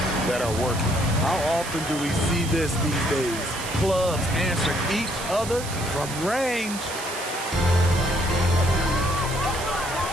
that are working. How often do we see this these days? Clubs answer each other from range.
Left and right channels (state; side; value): noise; right; hiss, 10 dB below the sound